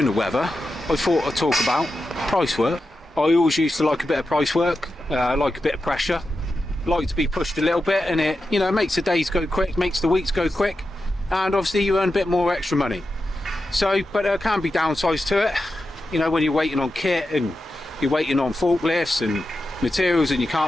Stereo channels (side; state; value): both; normal; correlation 0.90